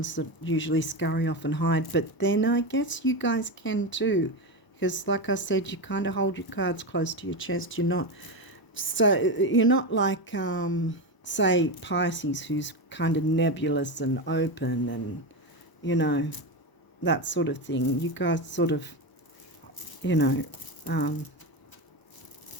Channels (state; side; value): late; right; 1.0 ms